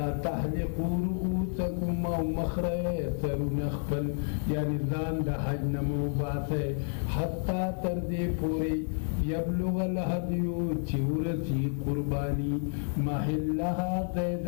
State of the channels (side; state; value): right; silent; 58 dB below the other